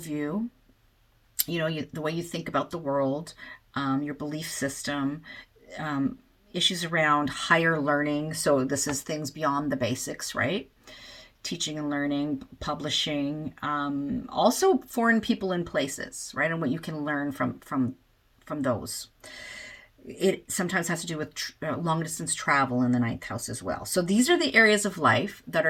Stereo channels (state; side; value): identical; both; correlation 1.00